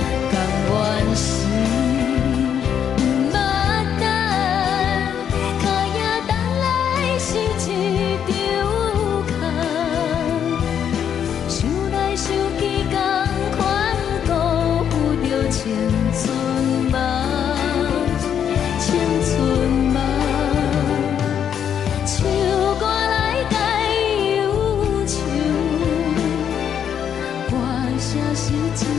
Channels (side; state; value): right; quieter; 8.7 dB